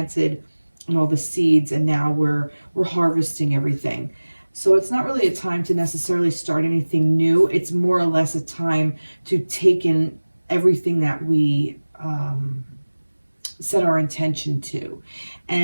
and all the seeds, and now we're harvesting everything. So it's not really a time to necessarily start anything new. It's more or less a time to take in everything that we set our intention to,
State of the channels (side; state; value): both; inverted; correlation -1.00